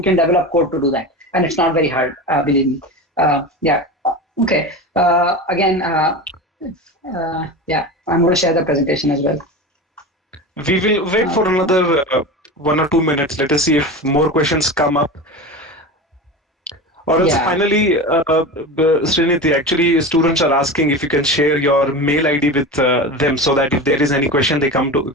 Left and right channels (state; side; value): normal; both; correlation 0.27